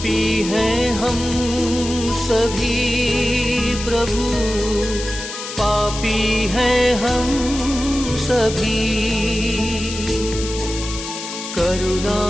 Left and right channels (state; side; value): noise; left; hiss, 9 dB below the sound